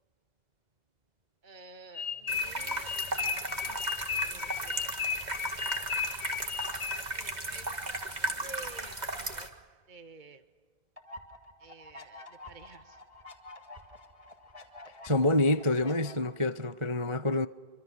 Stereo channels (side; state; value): left; late; 2.0 ms